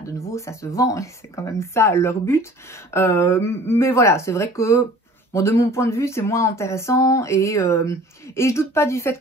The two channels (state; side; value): normal; both; correlation 0.47